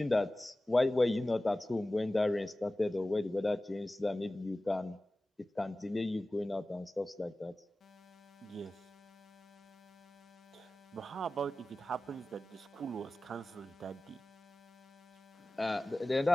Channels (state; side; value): normal; both; correlation 0.96